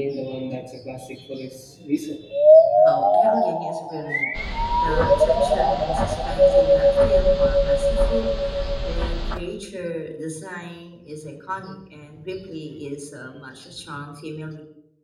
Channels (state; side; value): identical; both; correlation 1.00